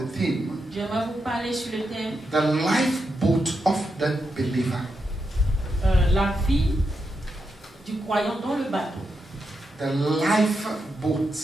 theme, j'aimerais vous parler sur le thème the lifeboat of the believer. la vie du croyant dans le bateau. The lifeboat.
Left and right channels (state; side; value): normal; both; correlation 0.85